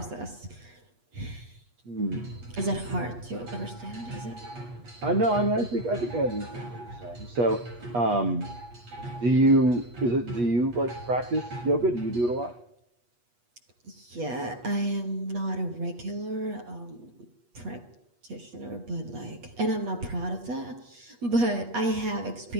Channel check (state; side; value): late; left; 8.3 ms